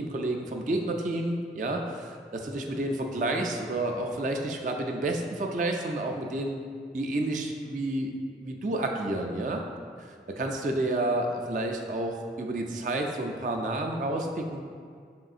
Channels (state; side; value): normal; both; correlation 0.51